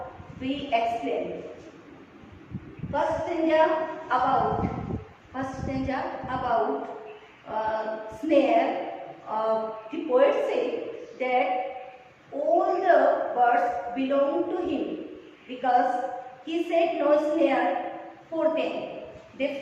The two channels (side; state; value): both; identical; correlation 1.00